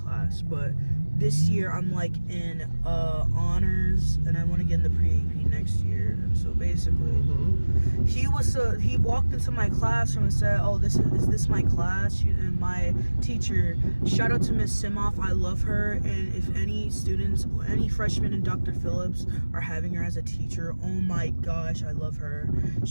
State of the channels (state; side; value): inverted; both; correlation -1.00